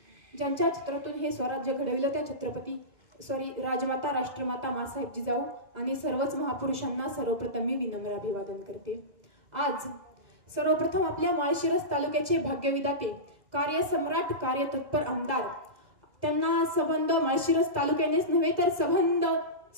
ज्यांच्या चित्रातून हे स्वराज्य घडविलं त्या राजमाता राष्ट्रमाता मासाहेब जिजाऊ आणि सर्वच महापुरुषांना सर्वप्रथम मी विनम्र अभिवादन करते। आज सर्वप्रथम आपल्या माळशिरस तालुक्याचे भाग्यविधाते कार्यसम्राट कार्यतत्पर आमदार त्यांना संबंध माळशिरस तालुक्यानेच नव्हे तर संबंध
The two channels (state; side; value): late; left; 2.0 ms